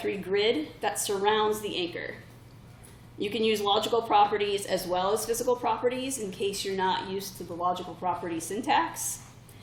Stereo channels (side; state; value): both; identical; correlation 1.00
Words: grid that surrounds the anchor. You can use logical properties as well as physical properties in case you're not used to the logical property syntax.